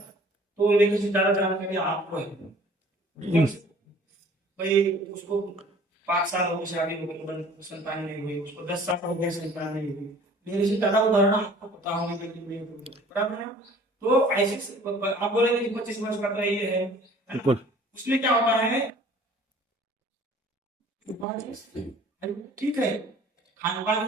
लेकिन से ज्यादा जानकारी आपको है, भाई उसको 5 साल हो गए शादी हो गई, संतान नहीं हुई, उसको 10 साल हो गए संतान नहीं हुई, मेरे से ज्यादा उदाहरण आपको पता होने के लिए बराबर है। तो ऐसे आप बोलेंगे कि 25 वर्ष का तो ये है, उसमें क्या होता है, ठीक है, खान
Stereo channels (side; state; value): both; normal; correlation 0.51